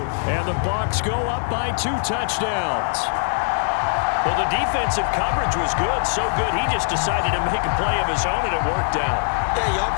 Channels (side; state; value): right; silent; digital silence